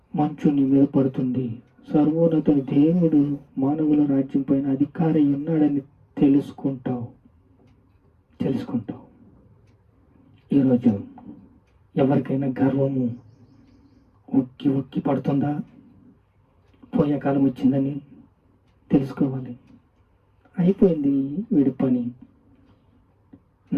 మంచు నీ మీద పడుతుంది. సర్వోన్నతుని దేవుడు మానవుల రాజ్యం పైన అధికారి ఉన్నాడని తెలుసుకుంటావు. ఈరోజు ఎవరికైనా గర్వము ఉక్కి పడుతుందా? పోయే కాలం వచ్చిందని తెలుసుకోవాలి. అయిపోయింది వీడి పని.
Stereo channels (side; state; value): both; identical; correlation 1.00